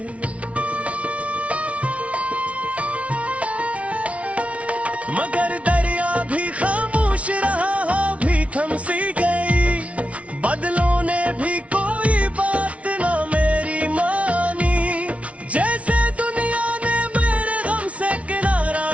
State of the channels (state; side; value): late; left; 0.064 ms